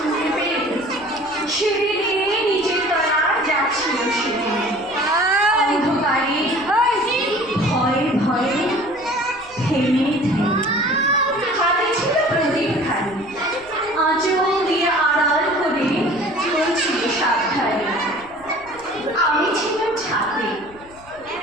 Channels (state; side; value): noise; left; rumble, 25 dB below the sound